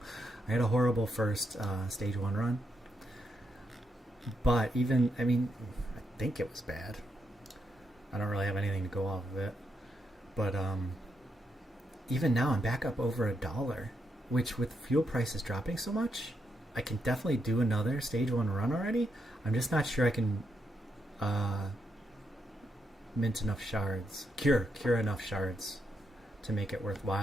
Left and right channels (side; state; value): both; normal; correlation 0.81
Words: I had a horrible first stage 1 run, but even, I mean, I think it was bad, I don't really have anything to go off of it, but even now I'm back up over $1, which with fuel prices dropping so much, I can definitely do another stage 1 run already. I'm just not sure I can mint enough shards, cure enough shards to make it